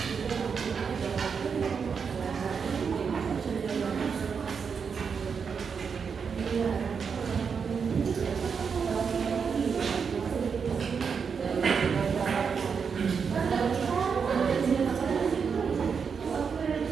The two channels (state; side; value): quieter; left; 6.1 dB